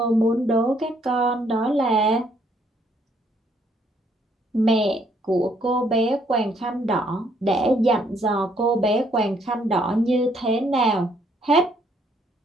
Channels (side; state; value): both; normal; correlation 0.68